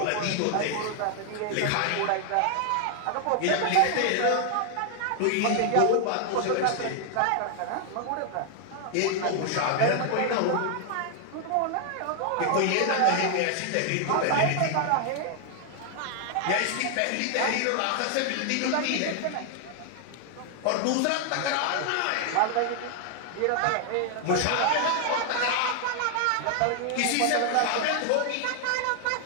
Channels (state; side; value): different; both; correlation 0.00